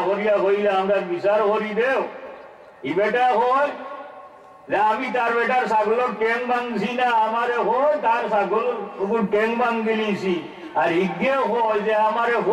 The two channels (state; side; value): identical; both; correlation 1.00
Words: করিয়া হইলে আমরা বিচার করি দেও। ই বেটা হয় যে আমি তার বেটার ছাগলের ট্যাং ভাঙছি না, আমারে হয় তার ছাগল ট্যাং ভাঙ দিলিছি। আর ইগে হয় যে আমারে